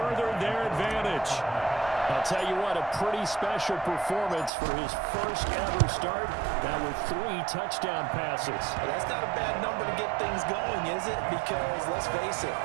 their advantage. I'll tell you what, a pretty special performance for his first ever start. Now with 3 touchdown passes. Well, that's not a bad number to get things going, is it? Because, let's face it,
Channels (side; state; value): left; drops out; at 4.5 s